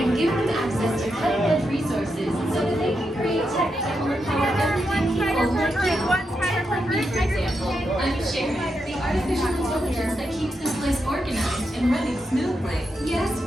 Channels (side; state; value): both; normal; correlation 0.84